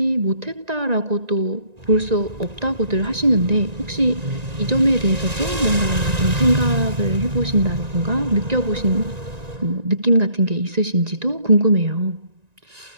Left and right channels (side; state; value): left; late; 1.9 ms